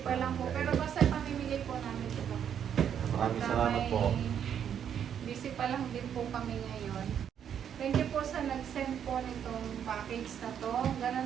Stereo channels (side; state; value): left; quieter; 8.7 dB